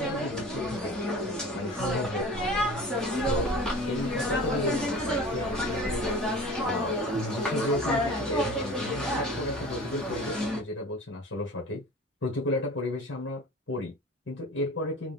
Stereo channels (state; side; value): normal; both; correlation 0.40